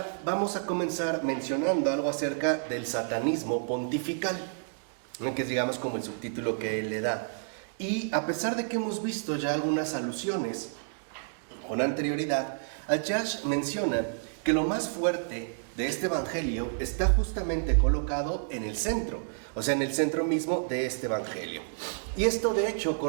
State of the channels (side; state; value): left; silent; digital silence